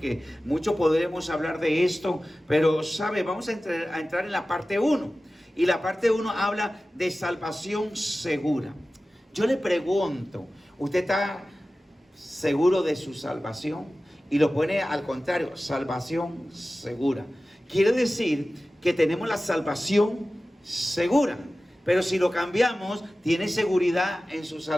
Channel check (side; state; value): both; normal; correlation 0.96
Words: mucho podremos hablar de esto, pero sabe, vamos a entrar en la parte 1. Y la parte 1 habla de salvación segura. Yo le pregunto, ¿usted está seguro de su salvación? Y lo pone al contrario, salvación segura. Quiere decir que tenemos la salvación segura. Pero si lo cambiamos, ¿tiene seguridad en su